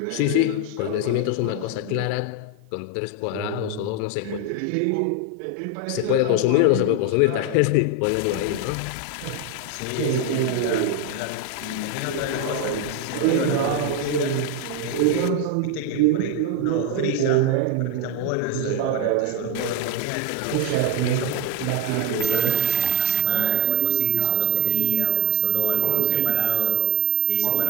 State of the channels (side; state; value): both; different; correlation 0.00